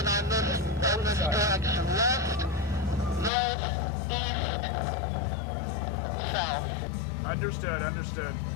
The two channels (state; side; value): drops out; right; at 3.3 s